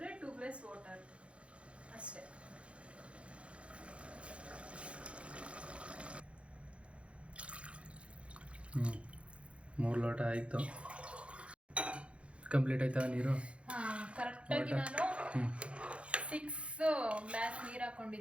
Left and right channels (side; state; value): left; late; 0.060 ms